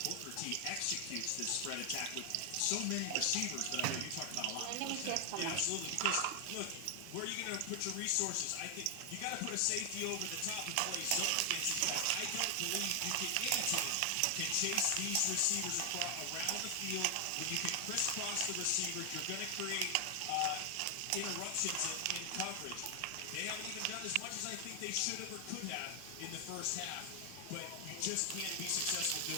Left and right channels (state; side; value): different; both; correlation 0.00